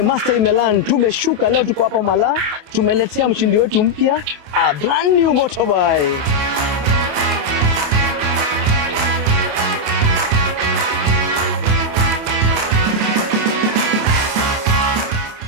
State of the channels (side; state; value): left; late; 28 ms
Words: Imelan tumeshuka leo, tuko hapa Mala, tumeletea mshindi wetu mpya a brand new motorbike.